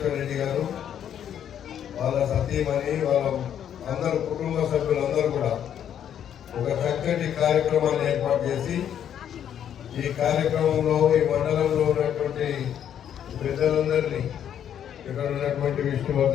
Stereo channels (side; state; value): right; quieter; 9.5 dB